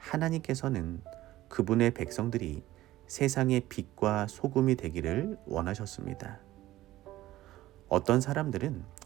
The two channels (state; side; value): quieter; left; 15.6 dB